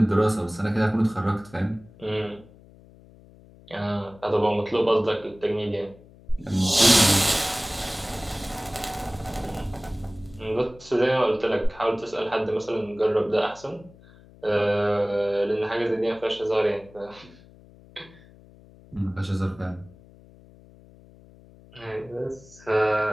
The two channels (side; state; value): left; noise; hum, 24 dB below the sound